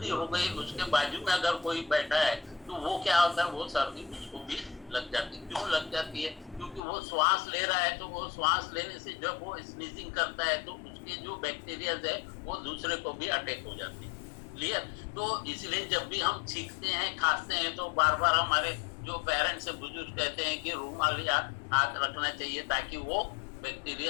हो गई, उसके बाजू में अगर कोई बैठा है तो वो क्या होता है, वो सर्दी उसको भी लग जाती है। क्यों लग जाती है? क्योंकि वो श्वास ले रहा है, तो वो श्वास लेने से जब वो स्नीजिंग करता है तो उसके जो बैक्टीरिया है वो दूसरे को भी अटैक हो जाते हैं, क्लियर। तो इसलिए जब भी हम छींकते हैं, खांसते हैं, तो बार बार हमारे जो पेरेंट्स से बुजुर्ग कहते हैं कि रूमाल या हाथ रखना चाहिए, ताकि वो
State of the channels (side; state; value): right; drops out; at 6.8 s